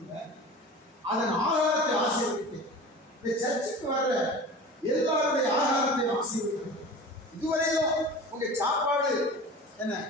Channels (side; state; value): both; normal; correlation 0.36